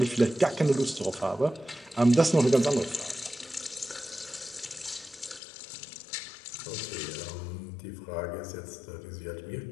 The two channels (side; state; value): right; drops out; at 5.4 s